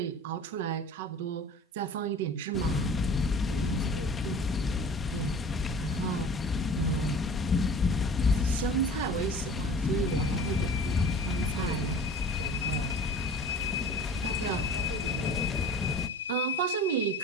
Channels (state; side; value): normal; both; correlation 0.42